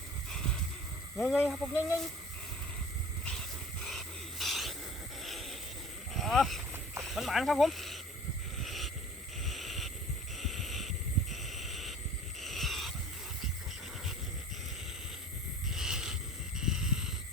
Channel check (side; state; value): both; normal; correlation 0.43